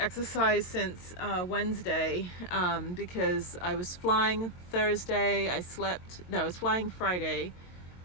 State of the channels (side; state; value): right; late; 22 ms